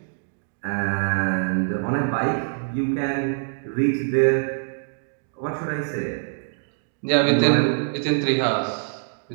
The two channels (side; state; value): left; silent; digital silence